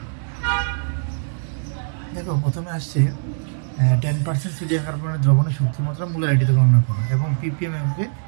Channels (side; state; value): left; silent; digital silence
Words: দেখো, প্রথমে আসছে 10% সোডিয়াম কার্বনেট দ্রবণের শক্তিমাত্রা মোলারিটিতে গণনা করো এবং পিপিএম এককে